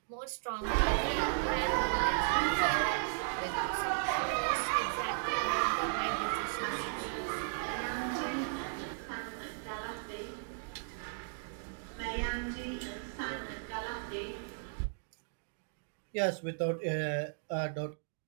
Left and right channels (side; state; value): left; silent; digital silence